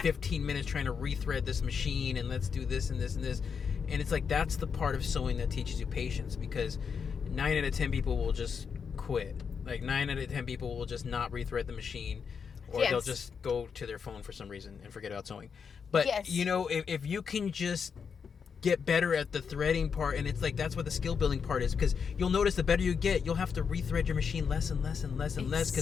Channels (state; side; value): quieter; right; 6.3 dB